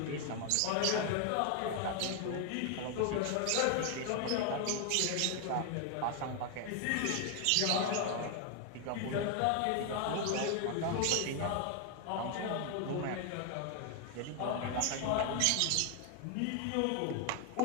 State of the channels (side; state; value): both; different; correlation 0.00